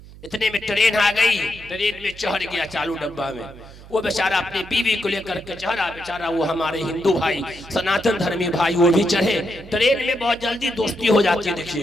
इतने में ट्रेन आ गई, ट्रेन में चढ़ गया चालू डब्बा में। वो बेचारा अपनी बीवी को लेकर के चढ़ा, बेचारा वो हमारे हिंदू भाई, सनातन धर्मी भाई, वो भी चढ़े। ट्रेन में बहुत जल्दी दोस्ती हो जाती है,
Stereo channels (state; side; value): noise; right; hum, 19 dB below the sound